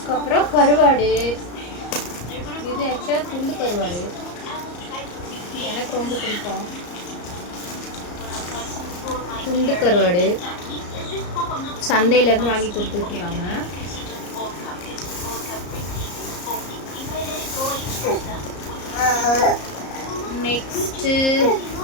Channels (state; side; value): late; right; 34 ms